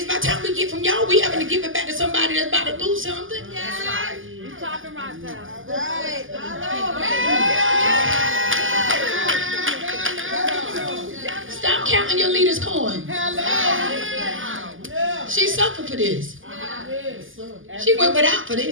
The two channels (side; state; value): left; late; 0.58 ms